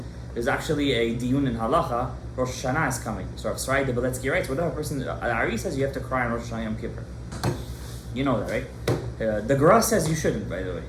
There's actually a diyun in halacha. Rosh Hashanah is coming. So Rav Shalom Gadaev writes, whatever person, Ari says you have to cry on Rosh Hashanah Yom Kippur. You know that, right? The Gra says you shouldn't, by the way.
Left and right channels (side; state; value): both; identical; correlation 1.00